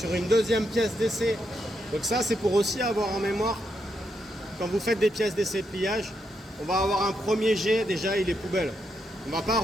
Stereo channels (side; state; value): both; normal; correlation 0.81